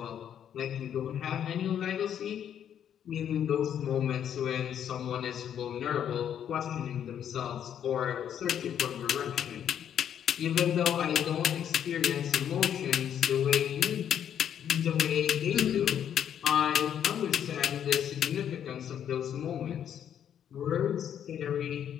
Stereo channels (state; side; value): quieter; right; 9.4 dB